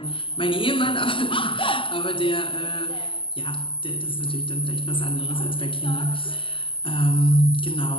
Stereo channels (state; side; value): late; right; 0.25 ms